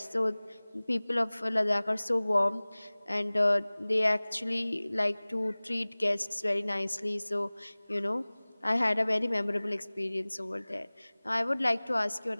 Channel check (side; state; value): both; inverted; correlation -1.00